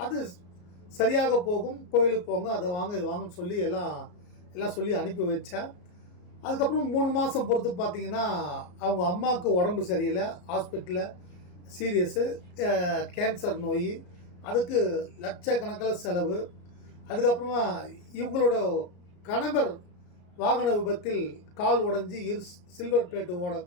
அது சரியாக போகும். கோயிலுக்கு போங்க, அதை வாங்க, இது வாங்கன்னு சொல்லி எல்லாம் சொல்லி அனுப்பி வச்சேன். அதுக்கப்புறம் 3 மாதம் பொறுத்து பார்த்தீங்கன்னா, அவங்க அம்மாவுக்கு உடம்பு சரியில்லை. ஹாஸ்பிட்டலில் சீரியஸு கேன்சர் நோய். அதுக்கு லட்சக்கணக்கில் செலவு. அதுக்கப்புறமா இவங்களோட கணவர் வாகன விபத்தில் கால் உடஞ்சி சில்வர் பிளேட்டு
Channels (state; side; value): late; right; 33 ms